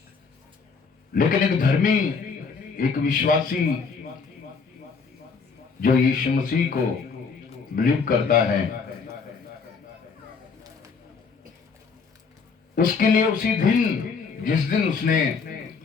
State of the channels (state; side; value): quieter; right; 5.2 dB